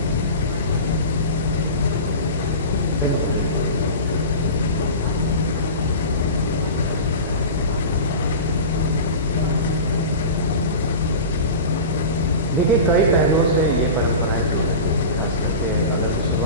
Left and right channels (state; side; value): inverted; both; correlation -0.31